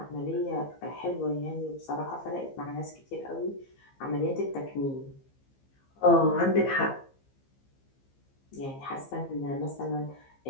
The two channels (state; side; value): late; right; 15 ms